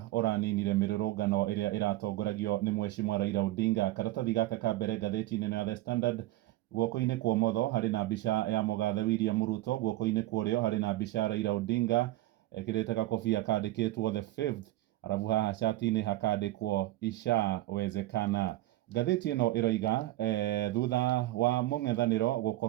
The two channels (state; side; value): quieter; left; 16.5 dB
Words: ũraninire mĩrũrũngano ĩrĩa ĩratongoragio nĩ Mheshimiwa Raila Odinga. Karatathi gaka ka mbere ngathĩti-inĩ ya The Standard, guoko-inĩ kwa ũmotho harĩ na mbica ya mũgathe William Ruto, guoko-inĩ kwa ũrĩo harĩ na mbica ya Raila Odinga ekĩrĩte gakobia kandĩkĩtwo the fifth, arabu haha cati-inĩ hakandĩkwo ishawezekana. Ngathĩti ĩno ĩroiga thutha wa mũng'ethanĩro